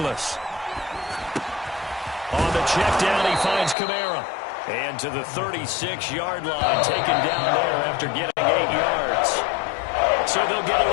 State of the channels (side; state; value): right; drops out; at 3.8 s